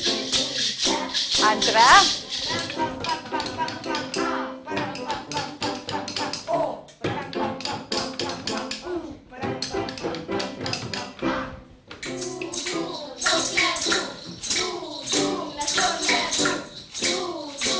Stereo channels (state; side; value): identical; both; correlation 1.00